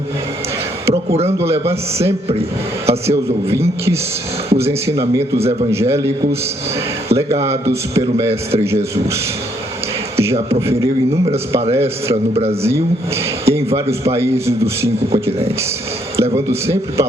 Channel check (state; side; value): normal; both; correlation 0.70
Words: procurando levar sempre a seus ouvintes os ensinamentos evangélicos legados pelo Mestre Jesus. Já proferiu inúmeras palestras no Brasil e em vários países dos 5 continentes, levando sempre